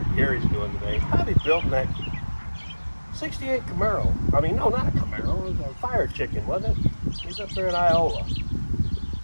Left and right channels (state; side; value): inverted; both; correlation -1.00